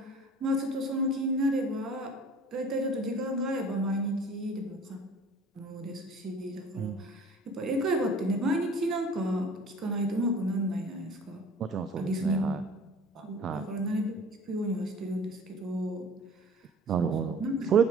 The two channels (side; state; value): both; normal; correlation 0.46